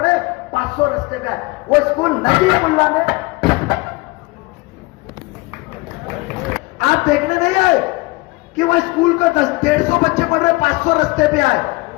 500 रस्ते पे आए। वो स्कूल नजीब मुल्ला ने, आप देखने नहीं आए कि वो स्कूल को 150 बच्चे पढ़ रहे, 500 रस्ते पे आए।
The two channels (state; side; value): quieter; right; 23.7 dB